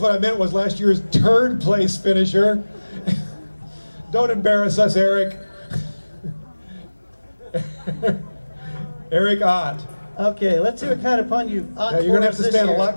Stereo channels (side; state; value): both; inverted; correlation -1.00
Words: I meant was last year's third place finisher. Don't embarrass us, Eric. Erik Ott. Okay, let's see what kind of pun you ought Yeah, you're going to have to stand year. a lot